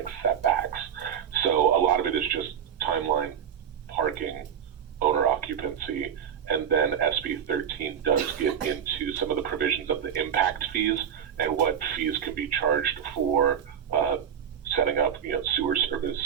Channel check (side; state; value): left; quieter; 8.5 dB